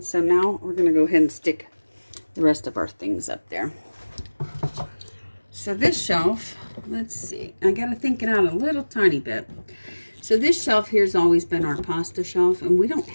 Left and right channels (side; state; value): both; inverted; correlation -1.00